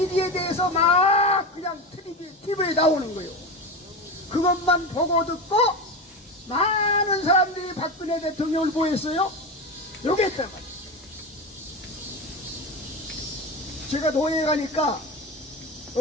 대해서 막 그냥 TV에 나오는 거예요. 그것만 보고 듣고 많은 사람들이 박근혜 대통령을 보였어요. 요게 있단 말이에요. 제가 노예에 가니까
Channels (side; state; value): both; normal; correlation 0.21